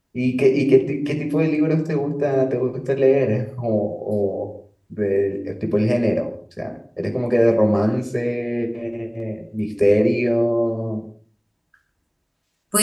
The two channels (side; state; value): both; identical; correlation 1.00